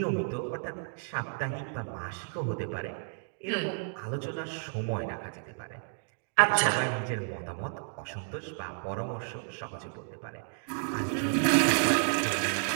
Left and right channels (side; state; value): left; silent; digital silence